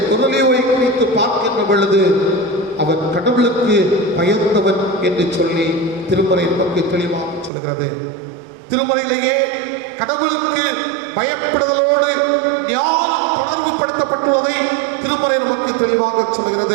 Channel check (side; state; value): left; drops out; at 7.5 s